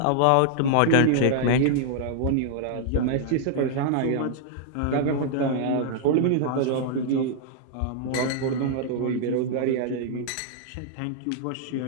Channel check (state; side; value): different; both; correlation -0.01